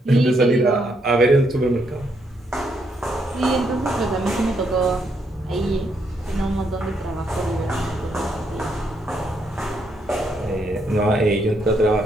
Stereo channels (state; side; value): normal; both; correlation 0.75